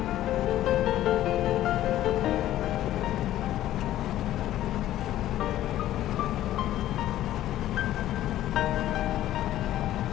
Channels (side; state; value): right; quieter; 13.4 dB